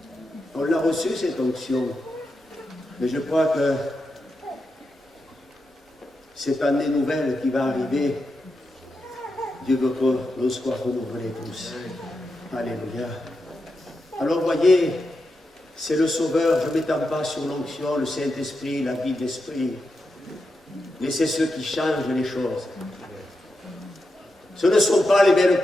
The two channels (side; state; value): both; normal; correlation 0.87